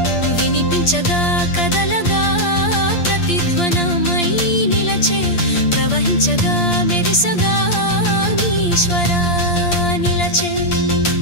వినిపించగా కదలగా ప్రతిధ్వనమై నిలచే ప్రవహించగా మెరిసగా ఈశ్వరా నిలచే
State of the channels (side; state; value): right; late; 8.6 ms